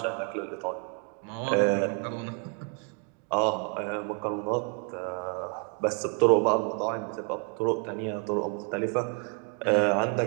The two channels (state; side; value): quieter; left; 39.5 dB